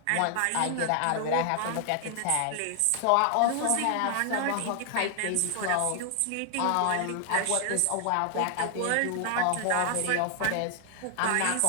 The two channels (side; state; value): both; different; correlation 0.00